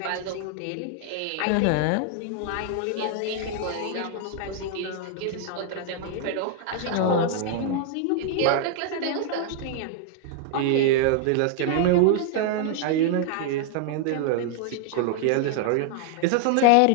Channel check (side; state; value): both; different; correlation 0.00